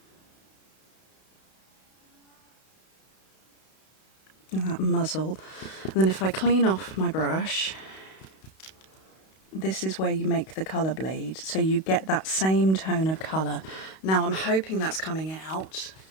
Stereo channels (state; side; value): late; right; 31 ms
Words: And that muzzle. And then if I clean off my brush, this is where you make the colour bleed. So you get that same tone of colour. Now I'm hoping that's coming out.